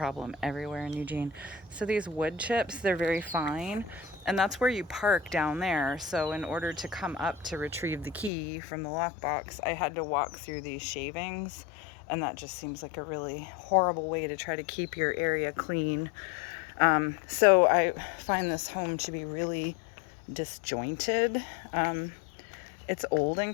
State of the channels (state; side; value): drops out; right; at 8.3 s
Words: everywhere in Eugene. So these wood chips, they're very fine, and that's where you park down there. So in order to come up to retrieve the key from the lockbox, I had to walk through these shavings, and that just seems like a really horrible way to try to keep your area clean. So I find this home to be really disjointed. It's old and